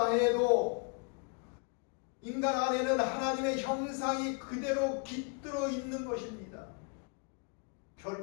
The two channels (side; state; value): right; quieter; 36.4 dB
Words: 해도 인간 안에는 하나님의 형상이 그대로 깃들어 있는 것입니다.